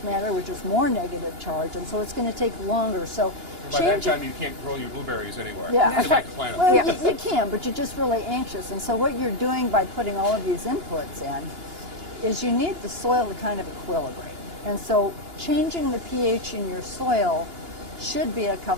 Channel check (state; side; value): late; left; 2.9 ms